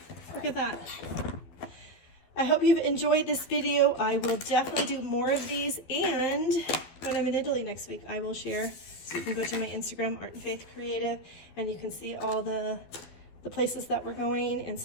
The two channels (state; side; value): late; right; 12 ms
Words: Look at that. I hope you've enjoyed this video. I will definitely do more of these. And when I'm in Italy next week, I will share. So you can go to my Instagram, Art and Faith Creative, and you can see all the places that we're going and